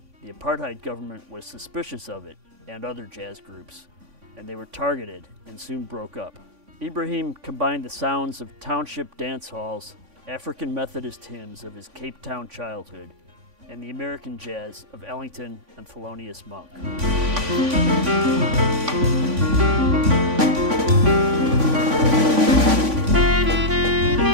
the apartheid government was suspicious of it and other jazz groups, and they were targeted and soon broke up. Ibrahim combined the sounds of township dance halls, African Methodist hymns of his Cape Town childhood, and the American jazz of Ellington and Thelonious Monk.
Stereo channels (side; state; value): left; late; 3.5 ms